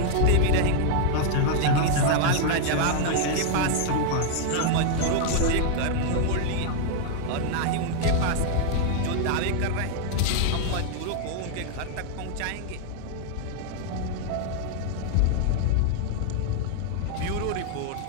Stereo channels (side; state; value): both; different; correlation 0.00